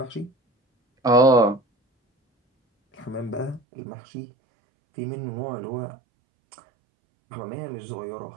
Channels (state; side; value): drops out; left; at 3.6 s